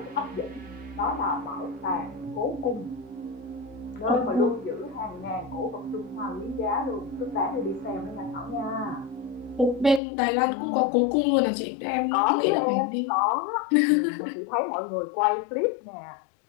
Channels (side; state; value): right; drops out; at 10.0 s